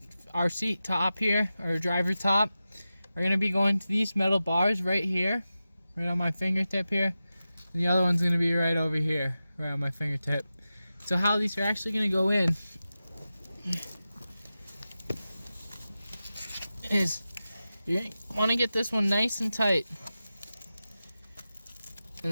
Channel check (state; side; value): inverted; both; correlation -0.93